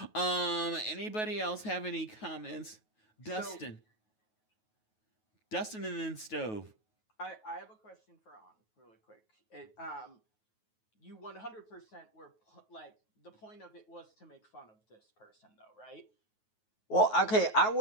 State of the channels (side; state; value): right; late; 9.3 ms